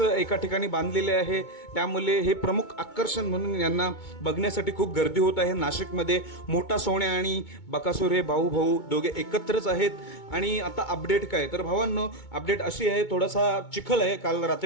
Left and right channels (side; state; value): right; late; 2.2 ms